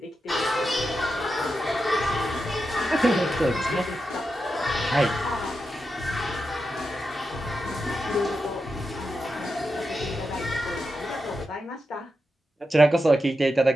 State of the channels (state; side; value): normal; both; correlation 0.88